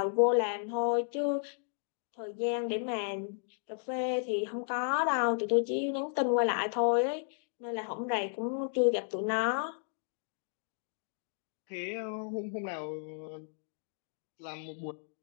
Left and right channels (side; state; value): right; silent; digital silence